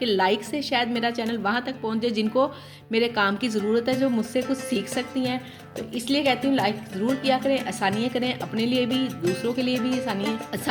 लाइक से शायद मेरा चैनल वहाँ तक पहुँचे जिनको मेरे काम की ज़रूरत है, जो मुझसे कुछ सीख सकती हैं। तो इसलिए कहती हूँ लाइक ज़रूर किया करें, आसानियाँ करें, अपने लिए भी दूसरों के लिए भी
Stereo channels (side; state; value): both; identical; correlation 1.00